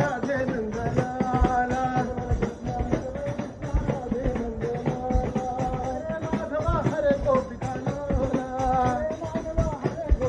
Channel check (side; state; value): both; identical; correlation 1.00